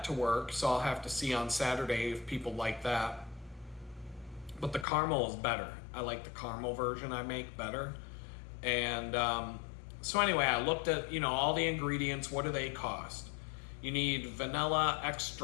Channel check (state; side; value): drops out; right; at 4.9 s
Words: to work, so I'll have to see on Saturday if people like that. But the caramel is better. I like the caramel version I make better. And so anyway, I looked at, all the ingredients. What do they cost? You need vanilla